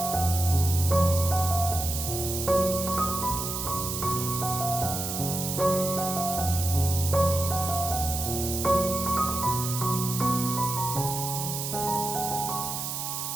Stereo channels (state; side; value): noise; right; hiss, 4 dB below the sound